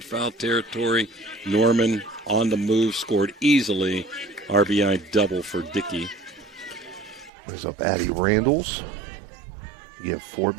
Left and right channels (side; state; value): left; drops out; at 7.3 s